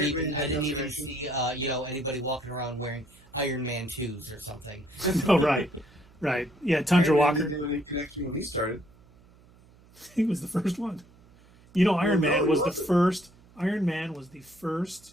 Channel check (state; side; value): noise; right; hum, 27 dB below the sound